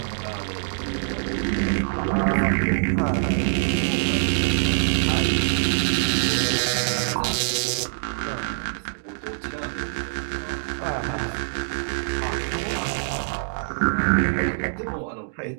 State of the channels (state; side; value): silent; left; digital silence